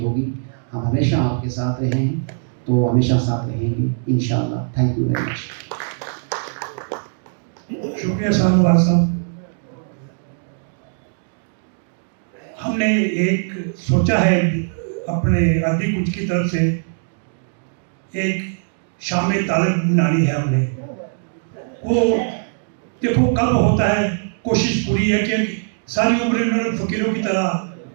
होगी, हम हमेशा आपके साथ रहे हैं, तो हमेशा साथ रहेंगे इंशाअल्लाह। Thank you very much. शुक्रिया शाहनवाज साहब। हमने एक सोचा है अपने अदबी कुंज की तरफ से एक शाम तालिब बनानी है हमने। वो देखो कब होता है, कोशिश पूरी है कि सारी उम्र इन्होंने फ़कीरों की तरह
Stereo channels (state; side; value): silent; left; digital silence